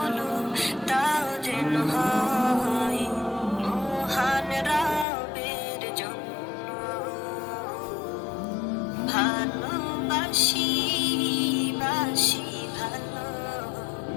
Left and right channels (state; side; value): drops out; right; at 5.1 s